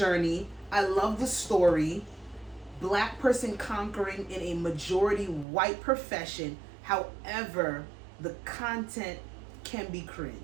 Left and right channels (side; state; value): left; drops out; at 5.5 s